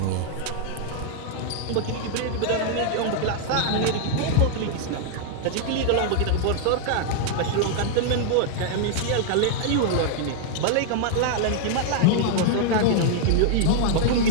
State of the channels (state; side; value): different; both; correlation -0.01